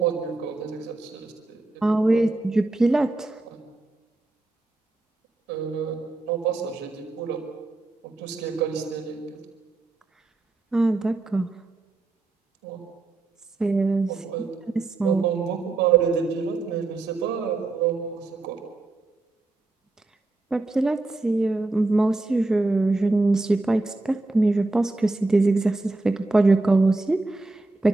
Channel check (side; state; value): left; quieter; 3.1 dB